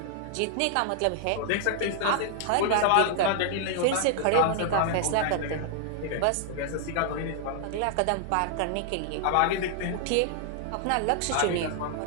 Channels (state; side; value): different; both; correlation 0.00